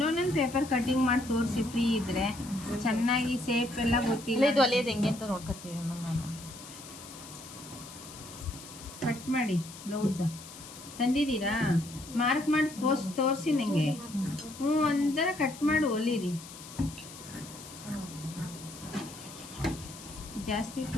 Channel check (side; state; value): left; noise; hiss, 15 dB below the sound